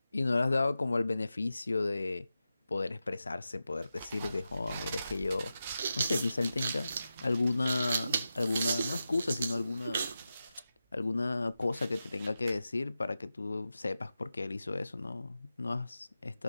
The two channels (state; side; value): inverted; both; correlation -0.92